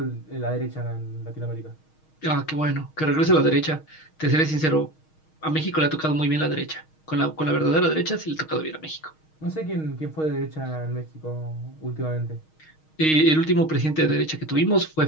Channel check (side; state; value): right; late; 6.4 ms